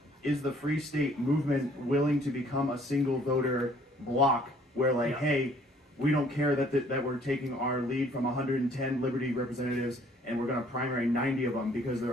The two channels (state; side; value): normal; both; correlation 0.59